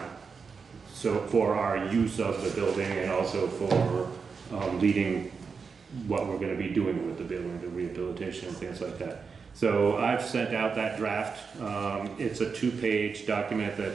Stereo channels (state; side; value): quieter; left; 5.4 dB